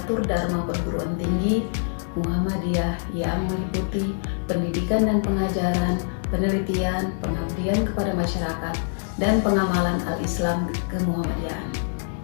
dharma perguruan tinggi Muhammadiyah yang meliputi pendidikan dan pengajaran, penelitian, pengabdian kepada masyarakat, dan pengamalan al-Islam kemuhammadiyahan.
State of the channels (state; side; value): silent; right; digital silence